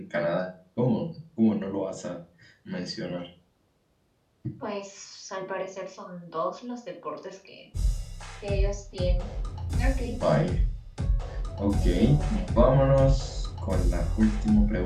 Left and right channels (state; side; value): identical; both; correlation 1.00